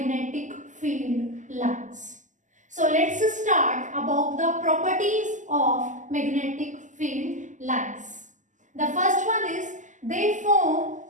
field lines. So let's start about the properties of magnetic field lines. The first one is they form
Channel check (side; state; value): left; late; 0.36 ms